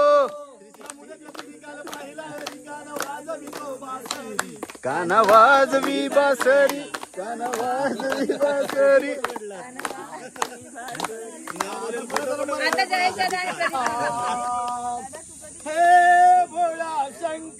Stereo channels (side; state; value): both; identical; correlation 1.00